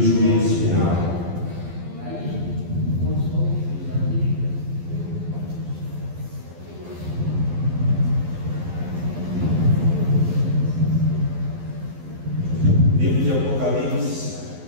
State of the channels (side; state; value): left; late; 12 ms